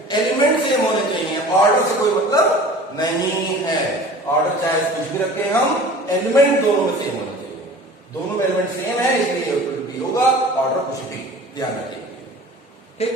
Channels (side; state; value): both; normal; correlation 0.43